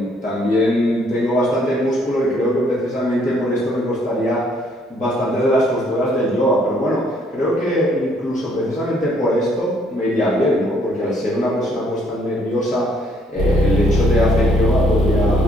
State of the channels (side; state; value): both; normal; correlation 0.66